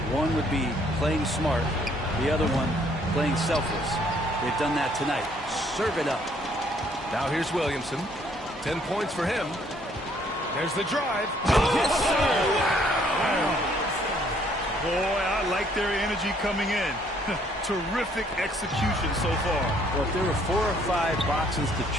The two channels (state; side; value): normal; both; correlation 0.65